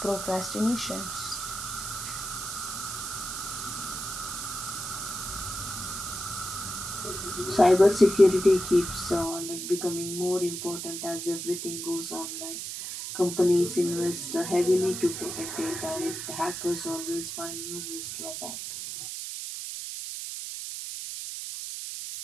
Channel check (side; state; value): right; noise; hiss, 6 dB below the sound